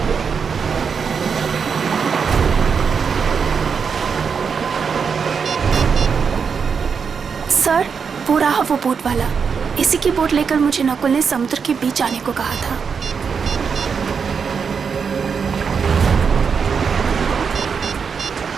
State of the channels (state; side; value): quieter; left; 6.1 dB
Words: सर, वो रहा वो बोट वाला। इसी की बोट लेकर मुझे नकुल ने समुद्र के बीच आने को कहा था।